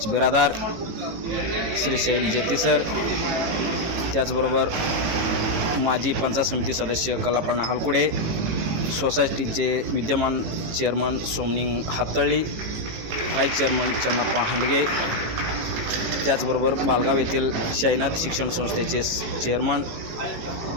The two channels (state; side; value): late; left; 18 ms